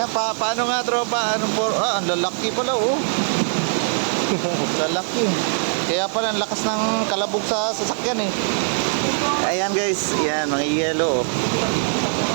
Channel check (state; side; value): silent; left; digital silence